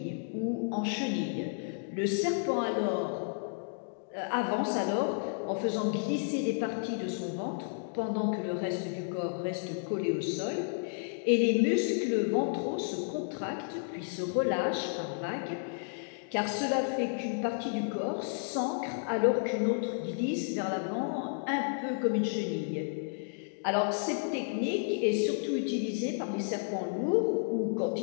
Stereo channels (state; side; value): silent; right; digital silence